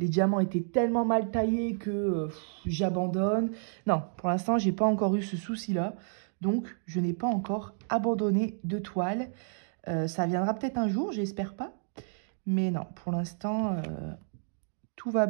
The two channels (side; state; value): left; silent; digital silence